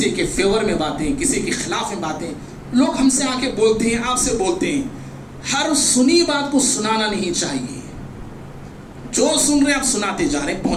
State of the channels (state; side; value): identical; both; correlation 1.00